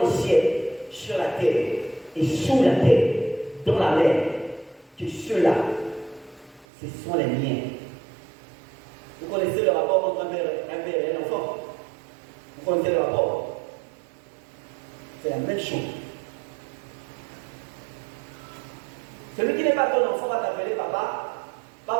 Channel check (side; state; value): left; drops out; at 6.7 s